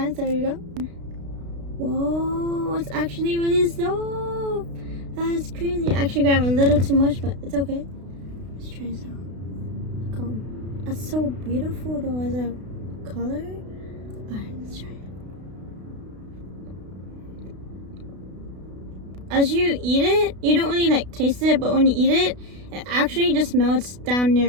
So here we go. Whoa, it's actually really soft. That's crazy. I actually grabbed a little too much, but it's okay. Let's try this out. Look how, that's so beautiful though as a color. Alright, let's try it. As you eat it, you don't really like taste it, but when you eat it, it actually just melts down your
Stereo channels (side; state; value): left; late; 32 ms